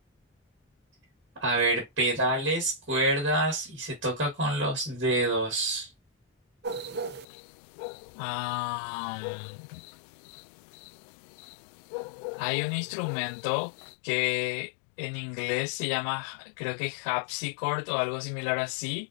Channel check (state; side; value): drops out; right; at 7.2 s